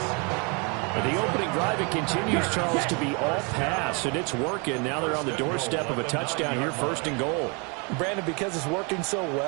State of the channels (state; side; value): quieter; left; 32.4 dB